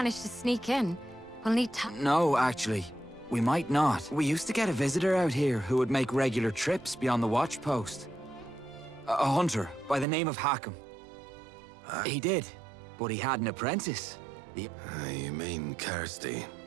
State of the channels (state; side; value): drops out; left; at 10.1 s